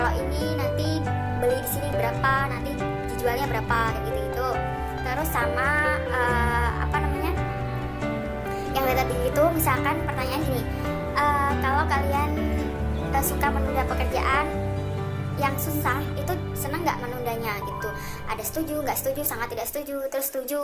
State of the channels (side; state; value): both; identical; correlation 1.00